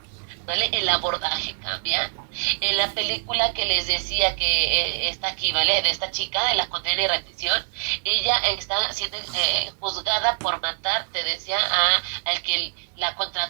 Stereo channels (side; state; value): left; silent; digital silence